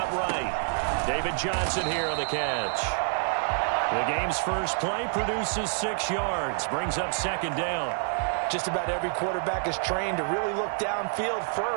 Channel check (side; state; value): left; silent; 58 dB below the other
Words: right. David Johnson here on the catch. The game's first play produces 6 yards. Brings up 2nd down. Just about every quarterback is trained to really look downfield